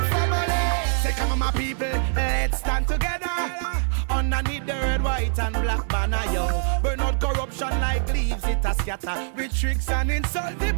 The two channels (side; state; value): left; silent; digital silence